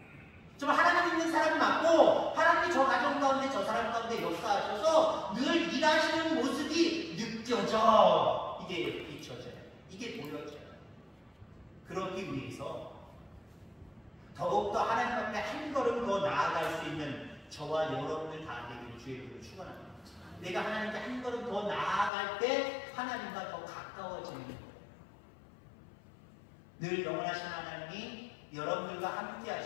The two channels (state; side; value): drops out; right; at 22.1 s